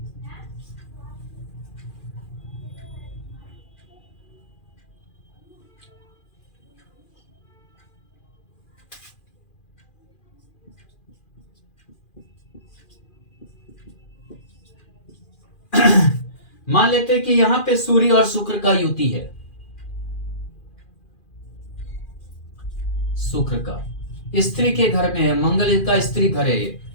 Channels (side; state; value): right; late; 2.4 ms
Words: मान लेते हैं कि यहां पे सूर्य और शुक्र का युति है। शुक्र का स्त्री के घर में है, मंगल का स्त्री घर है। ये